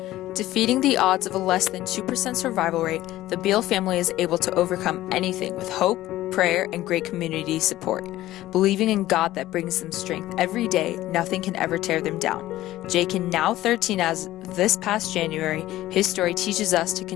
Defeating the odds of a less than 2% survival rate, the Beal family is able to overcome anything with hope, prayer, and great community support. Believing in God that brings them strength every day, nothing can ever tear them down. Jaken, now 13 as this past January, his story teaches us to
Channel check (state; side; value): quieter; right; 15.3 dB